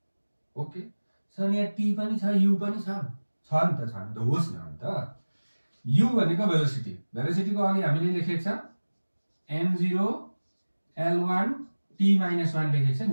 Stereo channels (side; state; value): both; inverted; correlation -1.00